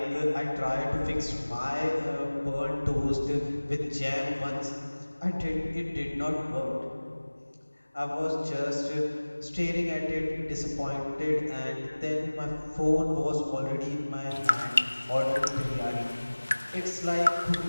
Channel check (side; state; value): both; inverted; correlation -1.00